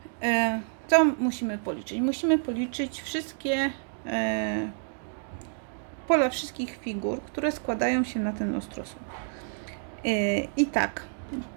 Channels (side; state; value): left; silent; digital silence